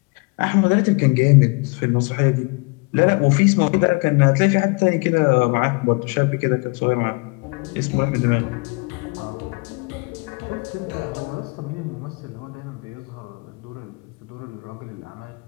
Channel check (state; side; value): quieter; right; 30.9 dB